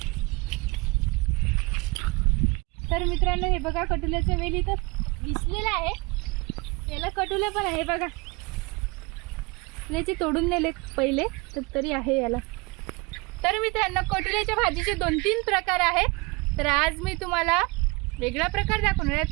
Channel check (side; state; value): left; quieter; 26.5 dB